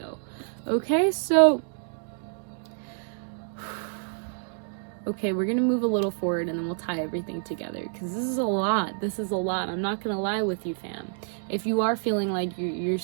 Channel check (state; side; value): silent; left; digital silence